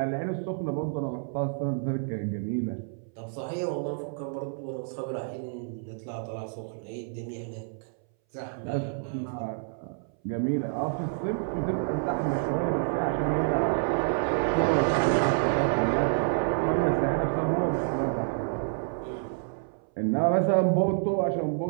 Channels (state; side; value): silent; left; 59 dB below the other